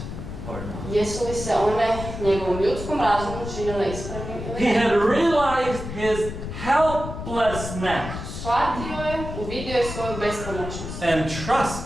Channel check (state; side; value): noise; left; rumble, 8 dB below the sound